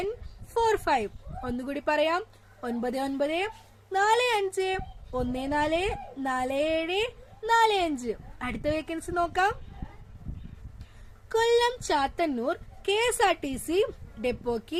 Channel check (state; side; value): identical; both; correlation 1.00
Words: ഒന്നുകൂടി പറയാം: 9945144745. അടുത്ത വേക്കൻസി നോക്കാം. കൊല്ലം ചാത്തന്നൂർ KSRTC ഡെപ്പോക്ക്